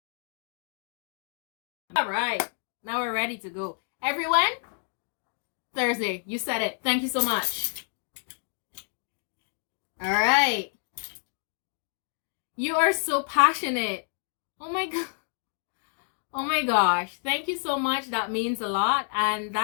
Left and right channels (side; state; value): right; silent; 59 dB below the other